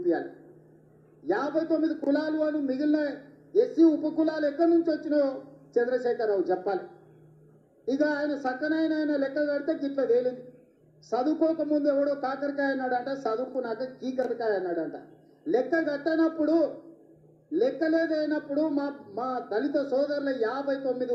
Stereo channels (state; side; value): identical; both; correlation 1.00